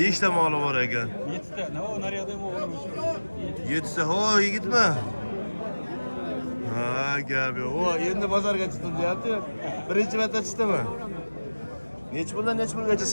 ta moli bor ekan. 7 ta. Nima naryoqda o'g'lim. 7 ta. Ho, yigitmi? Ha, gap yo'q. O, endi bozorga chiqdim deyapti. Birinchi marta chiqdimi? Nech pulgacha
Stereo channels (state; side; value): inverted; both; correlation -1.00